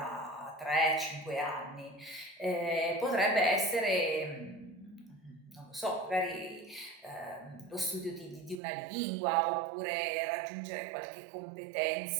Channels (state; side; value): drops out; left; at 8.6 s